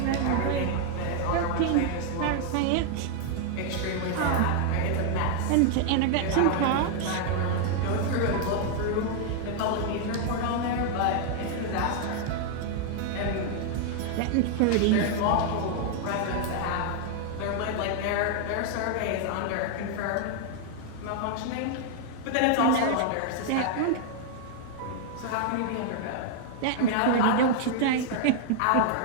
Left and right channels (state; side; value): different; both; correlation 0.00